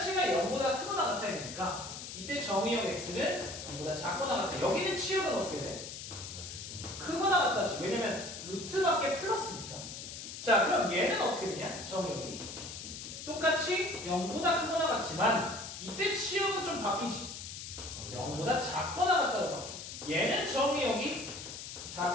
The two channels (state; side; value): noise; left; hiss, 9 dB below the sound